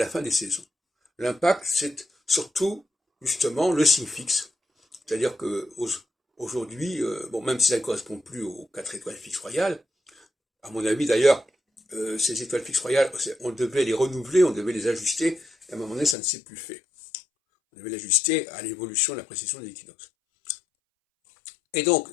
fin des saisons. L'impact, c'est surtout justement le signe fixe. C'est-à-dire que aujourd'hui, bon, même si ça ne correspond plus aux 4 étoiles fixes royales, à mon avis d'ailleurs, ces étoiles fixes royales, on devait les renouveler, on devait les ajuster, et à un moment donné, ça ne s'est plus fait. On devait l'ajuster à l'évolution de la précession des équinoxes. Et donc,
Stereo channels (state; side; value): drops out; right; at 16.2 s